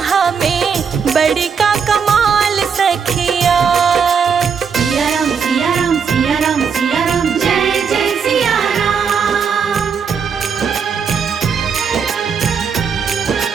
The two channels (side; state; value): left; quieter; 6.4 dB